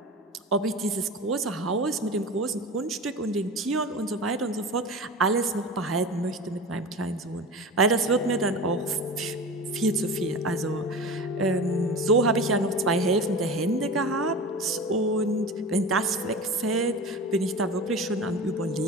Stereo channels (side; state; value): both; normal; correlation 0.31